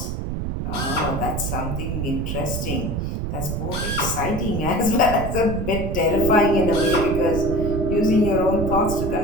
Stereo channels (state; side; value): noise; right; rumble, 3 dB below the sound